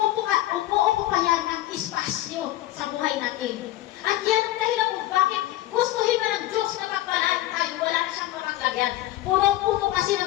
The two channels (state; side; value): quieter; right; 15.3 dB